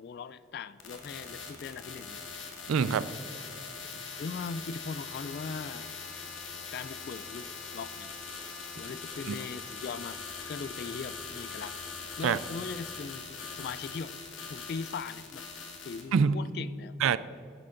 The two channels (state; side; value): normal; both; correlation 0.38